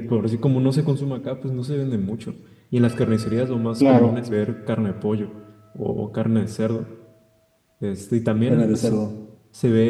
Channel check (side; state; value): both; identical; correlation 1.00